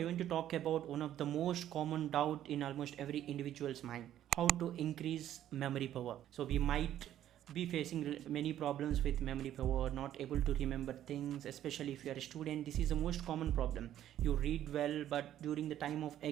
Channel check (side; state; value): left; quieter; 11.7 dB